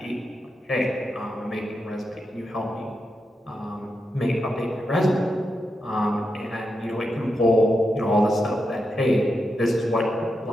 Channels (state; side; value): normal; both; correlation 0.86